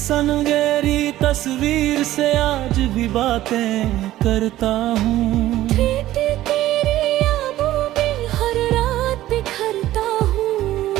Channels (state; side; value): quieter; left; 14.7 dB